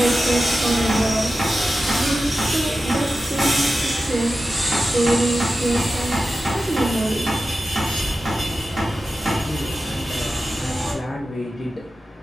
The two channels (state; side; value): normal; both; correlation 0.93